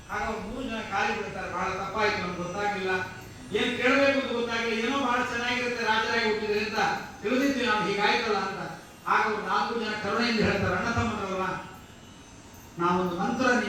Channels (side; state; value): both; identical; correlation 1.00